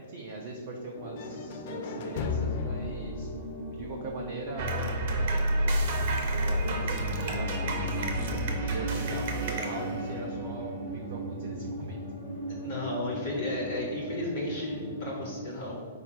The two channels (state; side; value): inverted; both; correlation -0.50